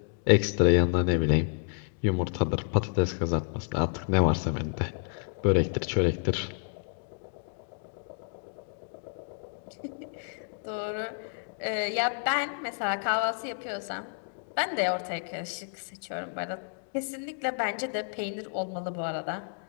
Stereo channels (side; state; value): right; silent; digital silence